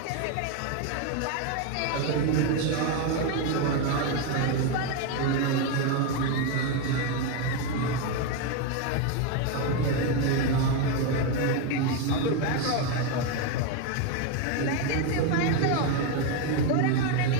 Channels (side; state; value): both; different; correlation 0.02